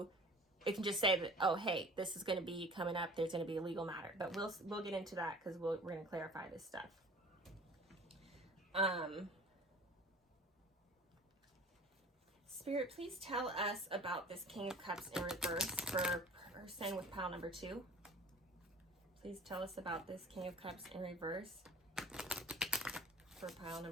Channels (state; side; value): normal; both; correlation 0.44